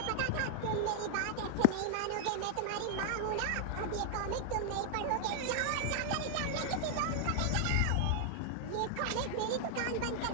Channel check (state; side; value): different; both; correlation 0.00